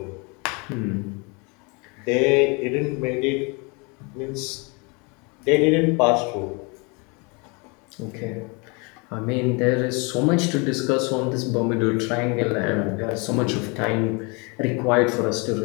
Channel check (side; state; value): right; quieter; 30.6 dB